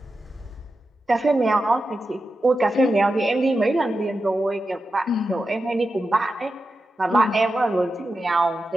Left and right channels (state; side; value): normal; both; correlation 0.90